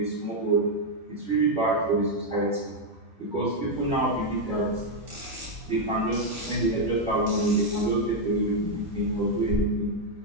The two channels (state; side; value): normal; both; correlation 0.01